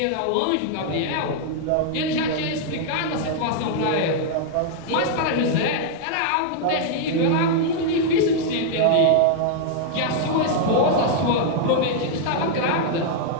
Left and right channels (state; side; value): different; both; correlation -0.01